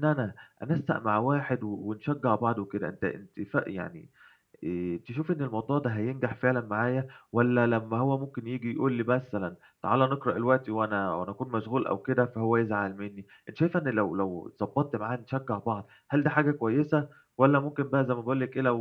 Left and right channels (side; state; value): both; identical; correlation 1.00